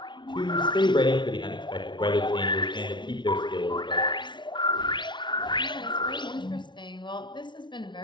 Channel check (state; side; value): late; right; 0.23 ms